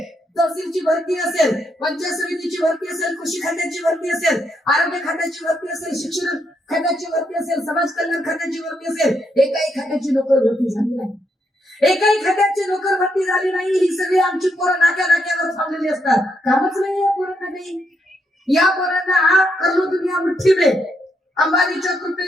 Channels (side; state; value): both; normal; correlation 0.78